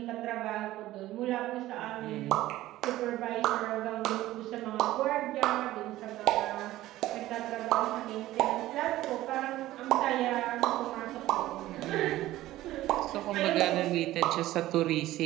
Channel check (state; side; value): quieter; left; 15.6 dB